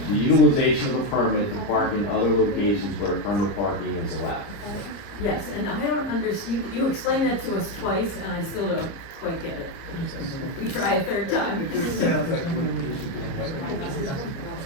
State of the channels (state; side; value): late; right; 30 ms